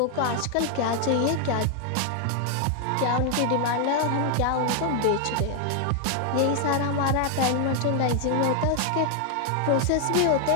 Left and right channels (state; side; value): different; both; correlation 0.00